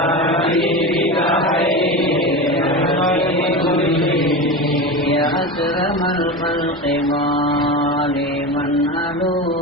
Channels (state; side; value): normal; both; correlation 0.24